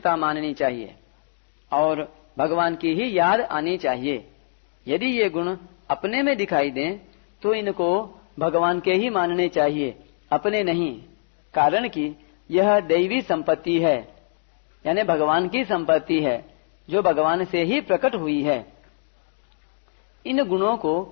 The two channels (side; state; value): right; silent; digital silence